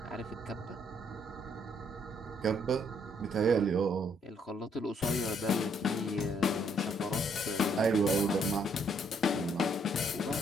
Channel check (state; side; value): normal; both; correlation 0.69